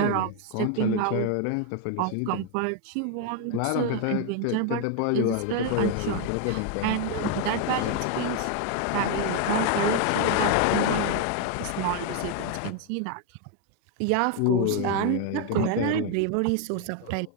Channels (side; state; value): both; different; correlation 0.01